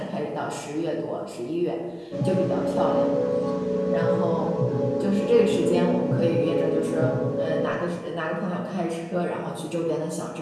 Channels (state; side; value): identical; both; correlation 1.00